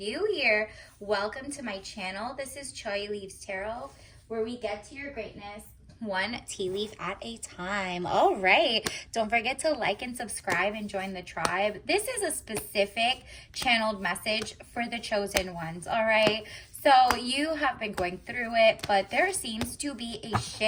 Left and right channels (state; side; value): identical; both; correlation 1.00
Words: here, welcome to my channel. This is Choi Leaves Tarot, where we get to your greatness one tea leaf at a time. All right. Don't forget to like and subscribe and join the tribe. This is a specific channeled message for the chosen ones. All right. So you have been going through it, but there seems to be a